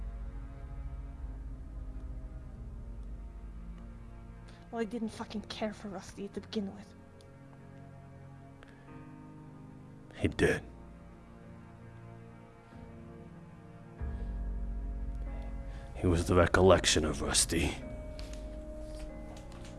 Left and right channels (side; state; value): both; identical; correlation 1.00